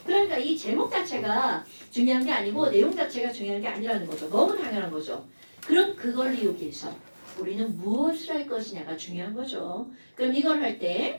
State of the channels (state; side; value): inverted; both; correlation -1.00